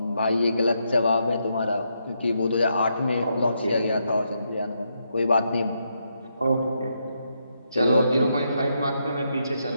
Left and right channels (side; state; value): both; inverted; correlation -0.80